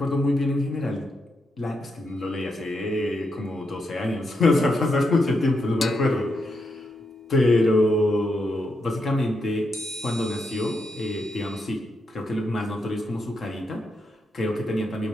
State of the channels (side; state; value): both; normal; correlation 0.82